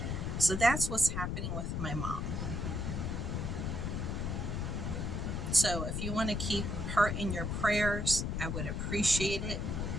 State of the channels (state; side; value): noise; left; rumble, 1 dB below the sound